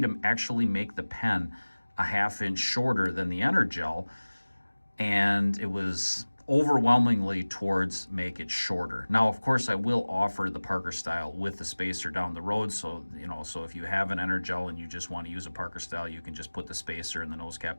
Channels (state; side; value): inverted; both; correlation -1.00